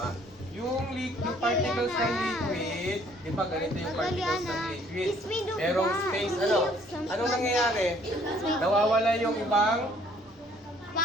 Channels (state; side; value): normal; both; correlation 0.61